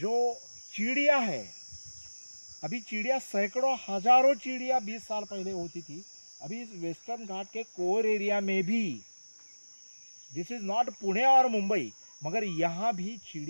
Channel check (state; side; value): inverted; both; correlation -1.00